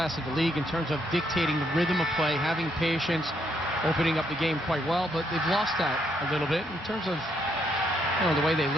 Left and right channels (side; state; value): both; normal; correlation 0.74